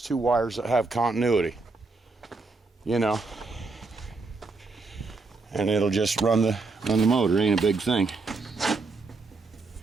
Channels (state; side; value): quieter; left; 3.8 dB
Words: wires that have continuity, and it'll just run the motor. Ain't a big thing.